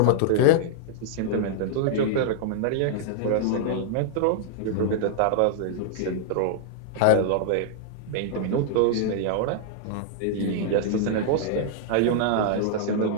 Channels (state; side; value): different; both; correlation -0.01